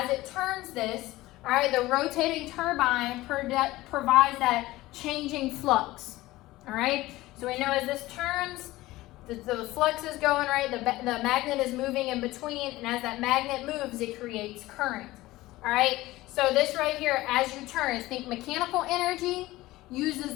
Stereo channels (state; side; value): quieter; right; 18.0 dB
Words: it turns this, all right, the rotating turbine provides that changing flux, all right? So we know as this turns, the flux is going, right? The magnet is moving in between, and as that magnet moves, it creates current, all right? So this right here, as you turn, think mechanical energy